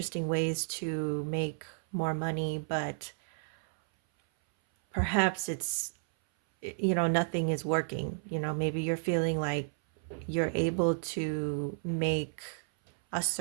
ways to make more money, but perhaps it's, nothing is working. Maybe you're feeling like you're able to make a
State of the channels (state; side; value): silent; left; 56 dB below the other